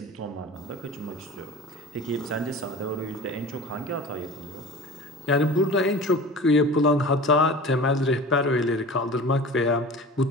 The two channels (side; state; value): both; normal; correlation 0.37